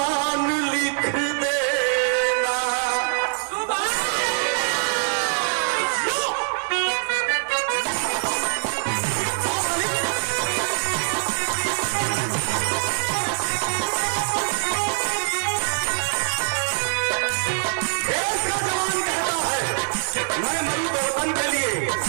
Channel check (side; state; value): left; silent; 56 dB below the other